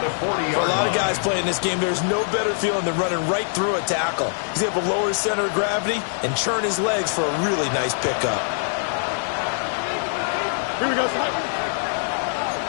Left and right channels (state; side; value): silent; right; 63 dB below the other